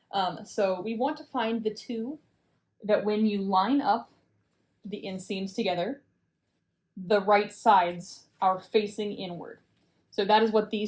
So we want to find the 2 that when you line up the inseams together, the right sides are facing inward. So that is what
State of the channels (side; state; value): both; identical; correlation 1.00